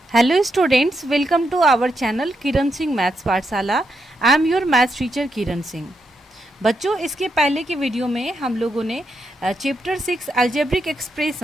Hello students, welcome to our channel Kiran Singh maths Pathshala. I am your maths teacher Kiran Singh. बच्चों, इसके पहले के वीडियो में हम लोगों ने chapter 6 algebraic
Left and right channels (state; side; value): normal; both; correlation 0.82